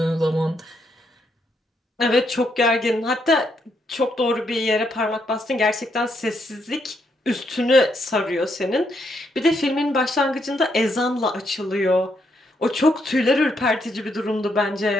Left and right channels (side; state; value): both; normal; correlation 0.77